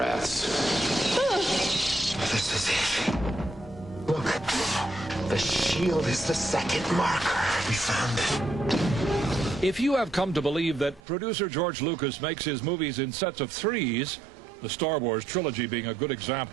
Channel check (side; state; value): left; drops out; at 11.0 s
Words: This is it. Look, the shield is the second marker. We found it. If you have come to believe that producer George Lucas makes his movies in sets of threes, the Star Wars trilogy being a good